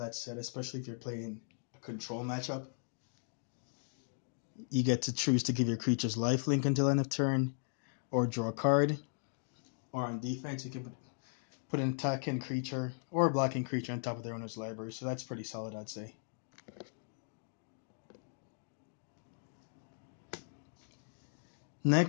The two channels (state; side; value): silent; right; digital silence